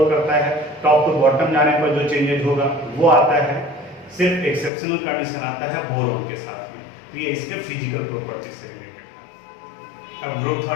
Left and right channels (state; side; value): drops out; right; at 4.7 s